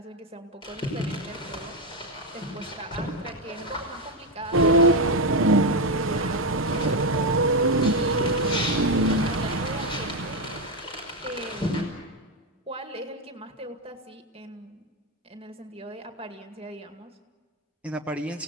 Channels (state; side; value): normal; both; correlation 0.08